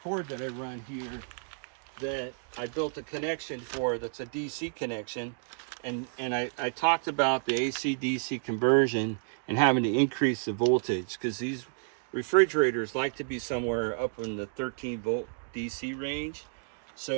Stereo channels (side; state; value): left; silent; digital silence